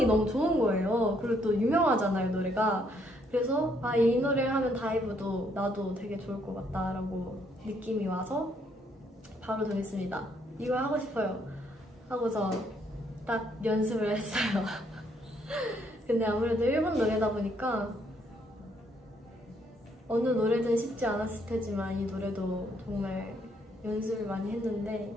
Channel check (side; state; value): both; normal; correlation 0.70